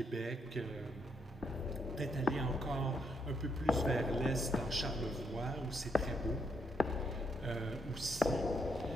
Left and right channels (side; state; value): both; normal; correlation 0.76